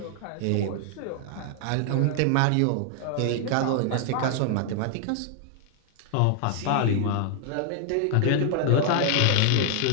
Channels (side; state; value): both; different; correlation 0.00